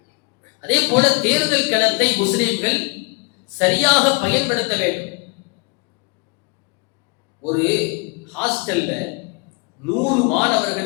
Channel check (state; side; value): quieter; right; 31.1 dB